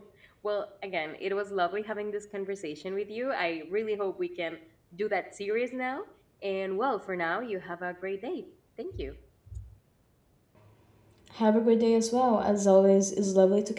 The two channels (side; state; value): both; identical; correlation 1.00